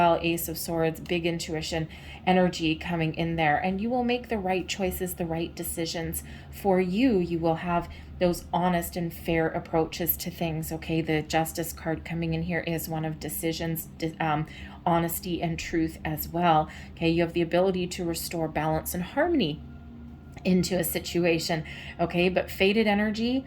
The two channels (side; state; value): both; identical; correlation 1.00